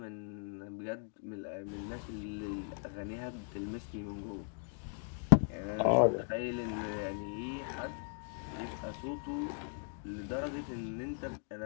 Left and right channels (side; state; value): right; silent; 53 dB below the other